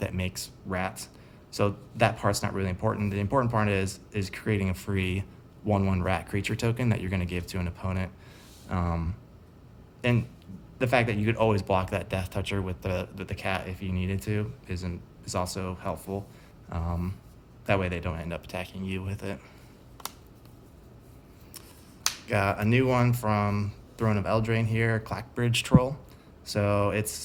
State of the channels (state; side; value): identical; both; correlation 1.00